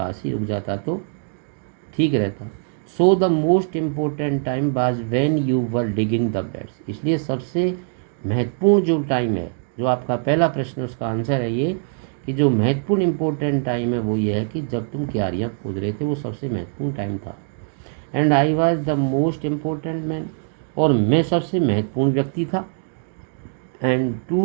ही रुक जाता तो ठीक रहता। So the most important time was when you were digging the beds, इसलिए सबसे महत्वपूर्ण जो टाइम है, जो आपका पहला प्रश्न उसका आंसर है ये कि जो महत्वपूर्ण इम्पोर्टेंट टाइम है वो ये है कि जब तुम क्यारियाँ खोद रहे थे, वो सबसे महत्वपूर्ण टाइम था। And I was the most important man, और मैं सबसे महत्वपूर्ण व्यक्ति था। And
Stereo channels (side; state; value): left; silent; digital silence